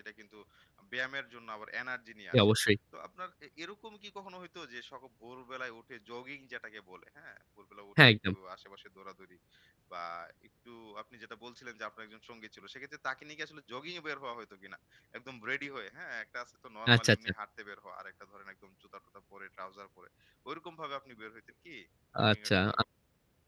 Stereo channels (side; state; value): both; identical; correlation 1.00